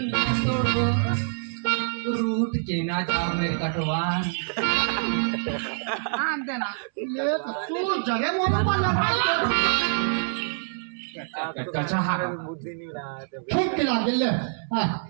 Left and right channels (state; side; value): silent; left; 61 dB below the other